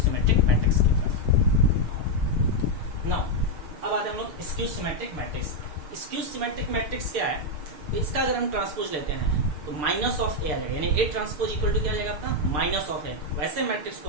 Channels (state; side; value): late; left; 6.7 ms